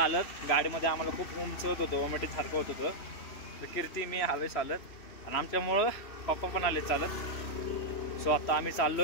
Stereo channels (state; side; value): late; right; 3.1 ms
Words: गाडीमध्ये आम्हाला खूप उंच होत होतं. वॉमिटिंग सारखं होत होतं. तर कीर्ती मी आलोय चालत. आणि आमच्यामुळं पप्पा पण आले चालत. सो आता आम्ही